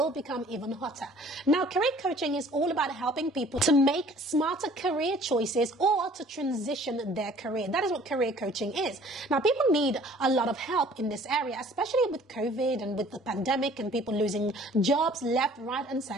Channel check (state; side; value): normal; both; correlation 0.53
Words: become even hotter. Now, career coaching is all about helping people to make smarter career choices or to transition their career. That is what career coaching is. Now, people need a lot of help in this area, especially with COVID and with the pandemic and people losing jobs left, right, and